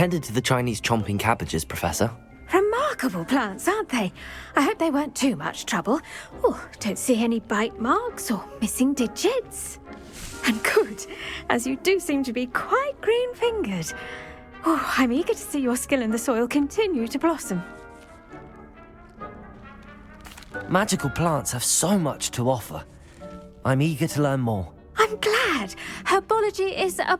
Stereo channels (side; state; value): both; identical; correlation 1.00